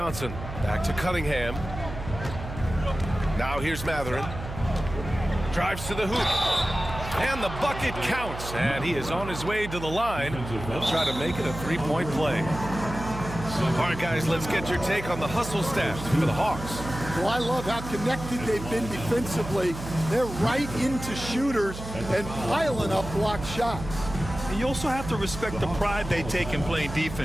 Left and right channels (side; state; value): right; noise; hum, 10 dB below the sound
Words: Back to Cunningham. Now here's Mathurin. Drives to the hoop. And the bucket counts. And he is on his way to the line. He'll try to make it a three-point play. All right, guys, let's get your take on the hustle stats for the Hawks. Well, I love how connected they've been defensively. They're right into shooters and piling up blocked shots. And you also have to respect the pride they take in playing